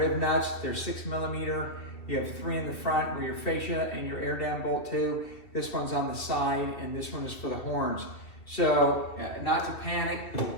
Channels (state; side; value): late; right; 2.7 ms